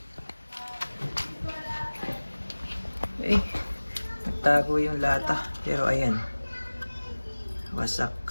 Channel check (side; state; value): both; inverted; correlation -1.00